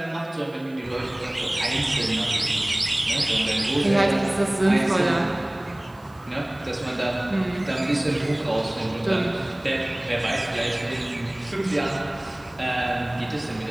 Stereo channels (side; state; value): right; noise; hiss, 30 dB below the sound